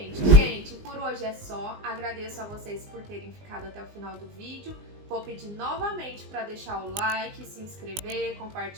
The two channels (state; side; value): late; left; 19 ms